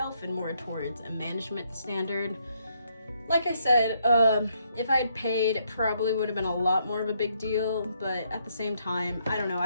and more towards a management standard. Like I said, if I had paid, it probably would have been a lot more of a big deal, but at the same time, I don't know,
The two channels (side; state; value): both; inverted; correlation -0.74